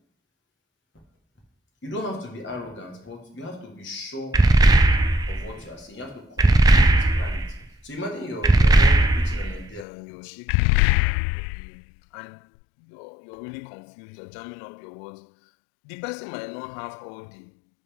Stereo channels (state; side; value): drops out; right; at 9.9 s